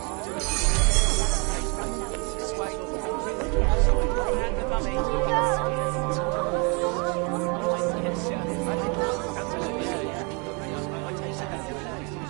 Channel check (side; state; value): left; quieter; 32.7 dB